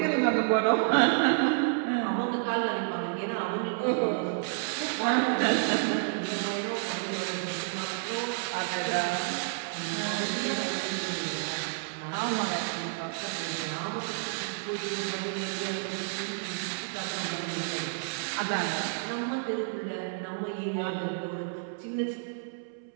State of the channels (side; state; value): left; silent; 58 dB below the other